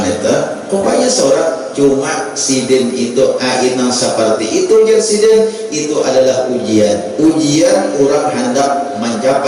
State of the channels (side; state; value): both; identical; correlation 1.00